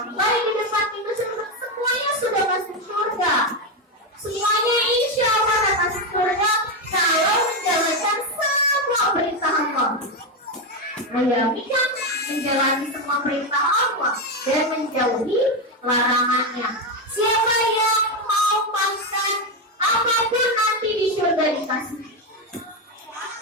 di depan itu semuanya sudah masuk surga. Semuanya insya Allah akan masuk surga kalau menjalankan semua perintah Allah. Ayami kan menjalani semua perintah Allah dan menjauhi larangannya. Siapa yang mau makan apapun nanti di surga dikasih.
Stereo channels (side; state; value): both; normal; correlation 0.09